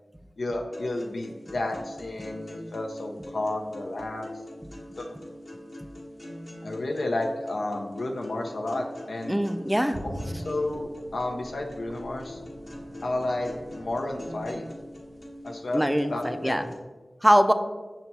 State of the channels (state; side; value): normal; both; correlation 0.98